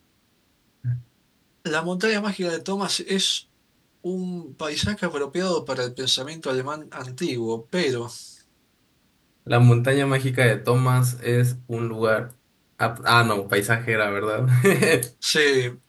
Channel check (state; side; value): identical; both; correlation 1.00